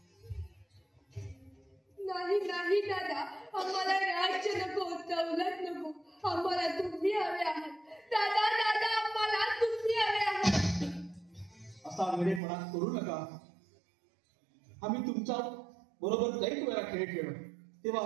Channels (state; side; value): drops out; left; at 12.4 s